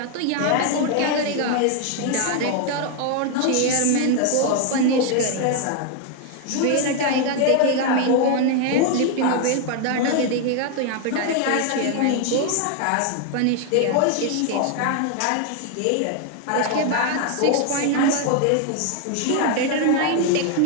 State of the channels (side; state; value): both; different; correlation 0.01